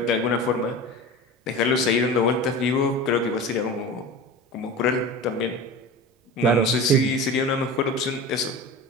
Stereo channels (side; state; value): both; normal; correlation 0.32